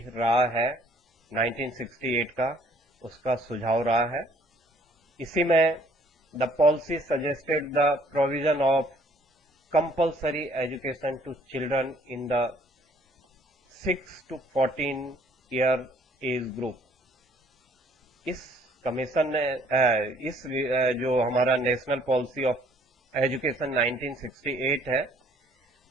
रहा है 1968 का, उसका सुझाव रहा है। इसी में the policy suggested the provision of compulsory education to children in the 6 to 14 year age group. इस कमीशन ने इस जो हमारा नेशनल पॉलिसी ऑफ एजुकेशन 1968 है,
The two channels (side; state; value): both; normal; correlation 0.60